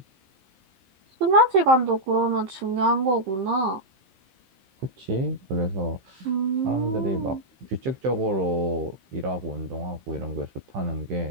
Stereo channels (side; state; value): left; late; 15 ms